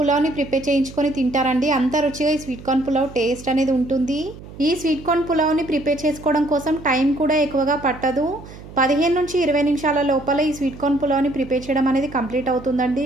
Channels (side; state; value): right; noise; hum, 16 dB below the sound